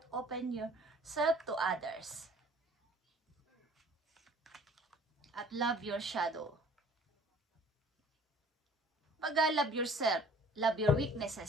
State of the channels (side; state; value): both; normal; correlation 0.51